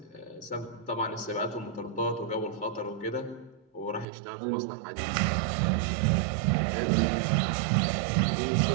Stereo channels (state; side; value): drops out; left; at 4.0 s